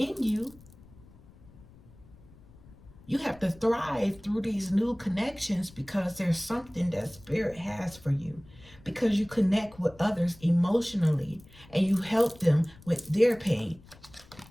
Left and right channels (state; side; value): noise; left; rumble, 23 dB below the sound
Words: you, You have to thrive through these new connections because there's something that Spirit has for you. Because you connect with others emotionally and you help them with their pain.